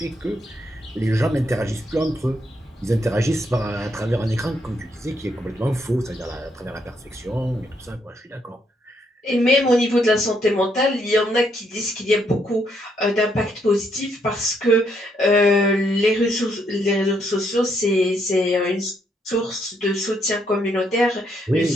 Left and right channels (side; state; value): both; normal; correlation 0.74